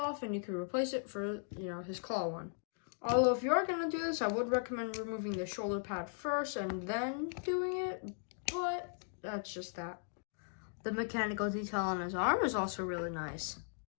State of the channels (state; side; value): silent; right; digital silence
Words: and you can replace it for, his claw one. Although if you are going to do this, I would recommend removing the shoulder pad first and then doing it, but that's just that. The mechanical detail on his arm is also really nice.